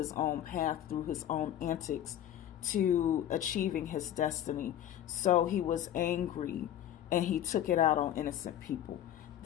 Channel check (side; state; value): right; quieter; 11.3 dB